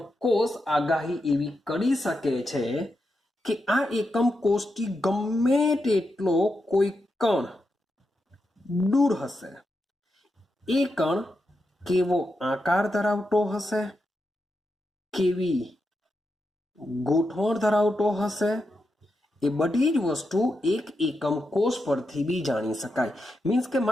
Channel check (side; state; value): both; normal; correlation 0.86